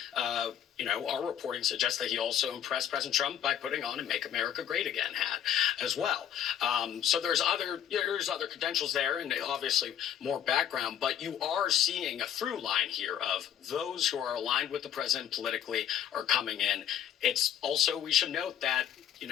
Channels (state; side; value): quieter; right; 10.0 dB